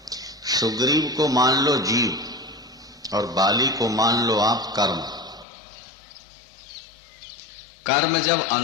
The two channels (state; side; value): drops out; right; at 5.5 s